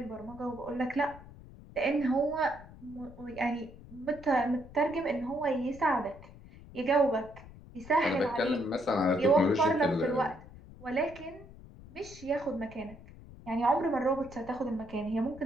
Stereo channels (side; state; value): left; noise; rumble, 18 dB below the sound